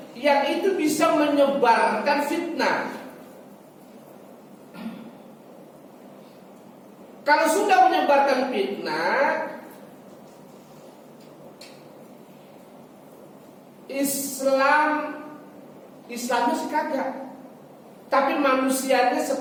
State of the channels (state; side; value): identical; both; correlation 1.00